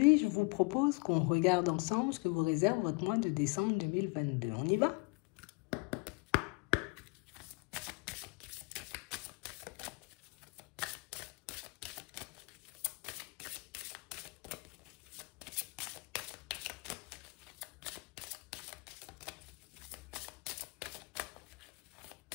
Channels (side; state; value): right; quieter; 29.7 dB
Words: je vous propose qu'on regarde ensemble ce que vous réserve votre mois de décembre 2022. On y va?